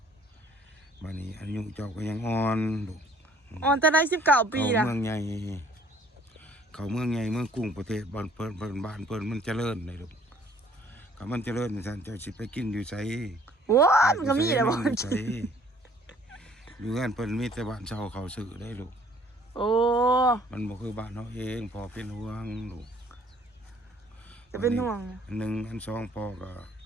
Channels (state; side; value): normal; both; correlation 0.58